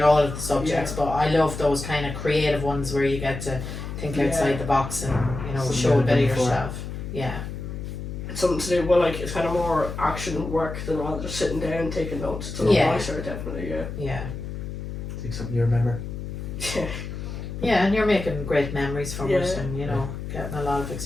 all of the subjects, but I love those kind of creative ones where you get to think outside the box and, you know, show a bit of yourself. Yeah. It's something to do, well, like, it's kind of more action work than rather just sitting down and taking notes. It's a lot nicer, definitely, Yeah. Think something you remember? Yeah, and you're making great memories from it, and, you know, getting a lot of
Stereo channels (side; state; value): left; noise; hum, 7 dB below the sound